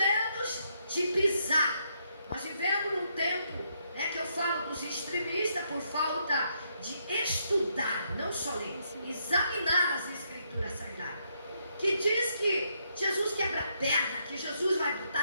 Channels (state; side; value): inverted; both; correlation -0.76